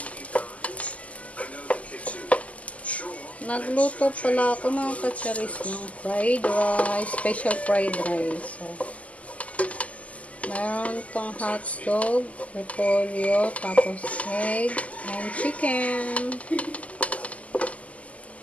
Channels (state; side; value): late; right; 0.069 ms